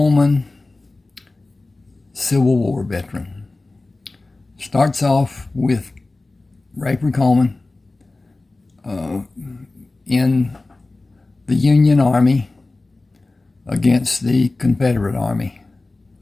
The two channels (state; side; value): quieter; right; 3.2 dB